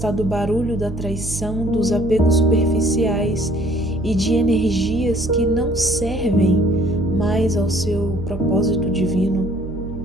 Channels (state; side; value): noise; right; hum, 9 dB below the sound